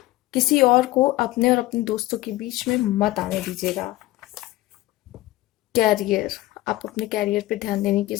किसी और को अपने और अपने दोस्तों के बीच में मत आने दीजिएगा। कैरियर, आप अपने कैरियर पे ध्यान देने की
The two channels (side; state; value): right; quieter; 17.5 dB